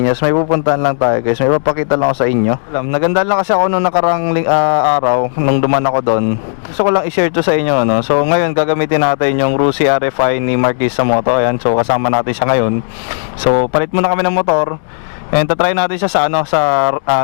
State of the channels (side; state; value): right; silent; digital silence